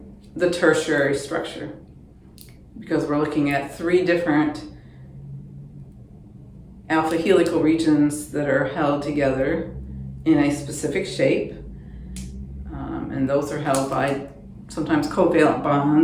the tertiary structure, because we're looking at 3 different alpha helical regions that are held together in a specific shape. And those are held by sometimes covalent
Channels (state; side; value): identical; both; correlation 1.00